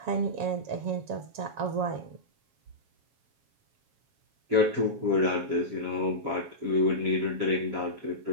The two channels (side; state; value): left; late; 7.3 ms